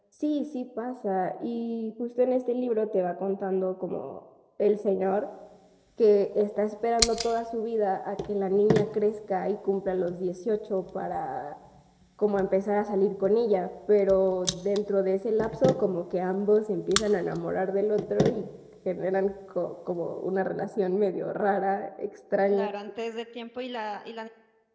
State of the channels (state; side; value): identical; both; correlation 1.00